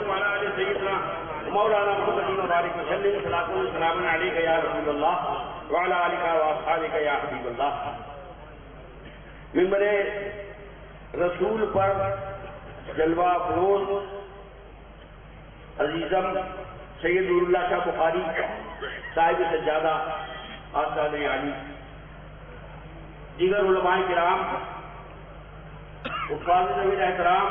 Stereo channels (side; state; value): both; identical; correlation 1.00